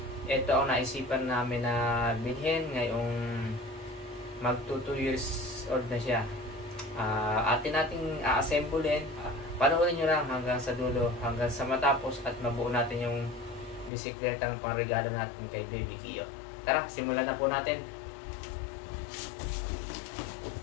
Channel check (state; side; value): drops out; right; at 13.9 s